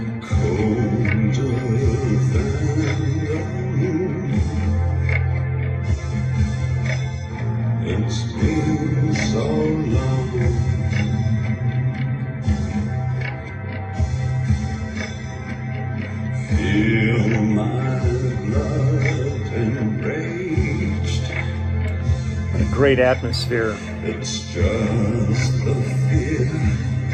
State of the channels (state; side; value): identical; both; correlation 1.00